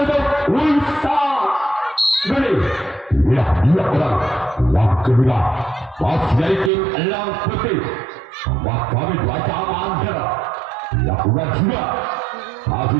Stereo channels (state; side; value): drops out; left; at 6.7 s